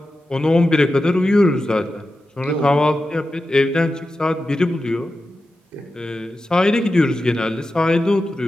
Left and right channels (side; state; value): both; normal; correlation 0.92